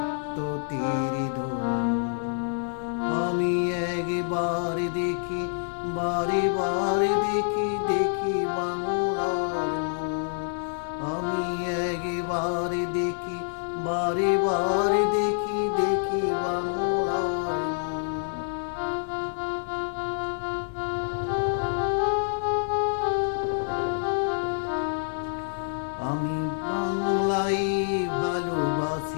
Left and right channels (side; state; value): right; silent; digital silence